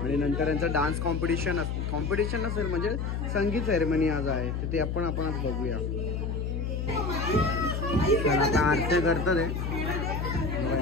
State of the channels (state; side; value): noise; left; hum, 2 dB below the sound